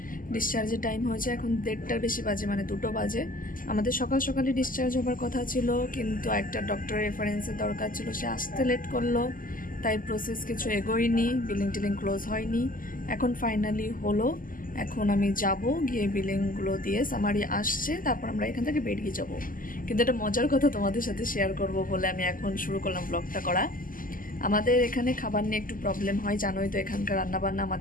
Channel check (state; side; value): late; right; 0.41 ms